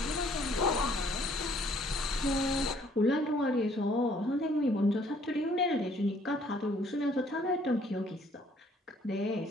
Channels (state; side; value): normal; both; correlation 0.61